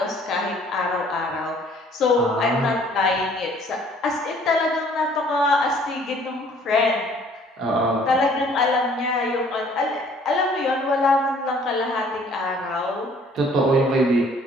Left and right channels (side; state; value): both; normal; correlation 0.57